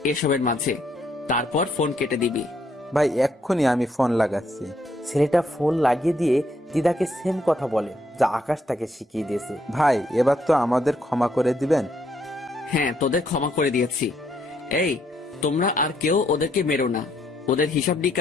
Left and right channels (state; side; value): normal; both; correlation 0.72